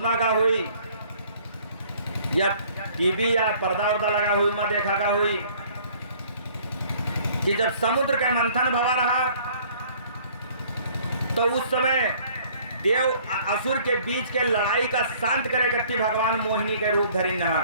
का हुई या टीवी या पर्दा उर्दा लगा हुई में देखा का हुई कि जब समुद्र के मंथन भवा रहा, तो उस समय देव असुर के बीच के लड़ाई का शांत करे करती भगवान मोहिनी के रूप धरिन रहा।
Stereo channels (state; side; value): inverted; both; correlation -0.56